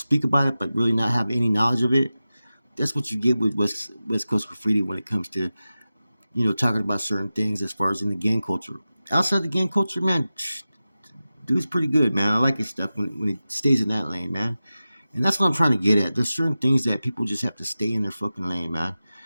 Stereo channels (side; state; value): both; inverted; correlation -0.95